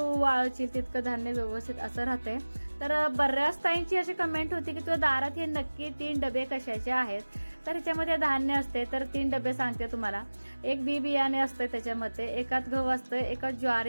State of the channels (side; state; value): both; inverted; correlation -1.00